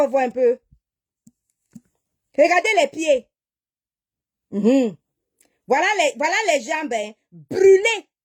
voir un peu. Regardez les pieds. Voilà les jambes, hein, brûlées.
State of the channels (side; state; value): both; identical; correlation 1.00